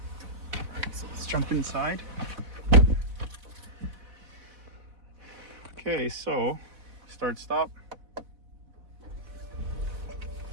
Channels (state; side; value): late; left; 4.0 ms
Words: so let's jump inside. Okay, so start, stop.